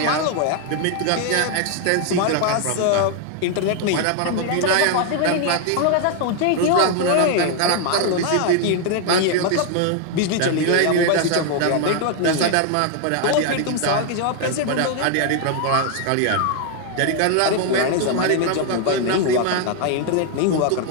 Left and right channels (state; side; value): different; both; correlation 0.00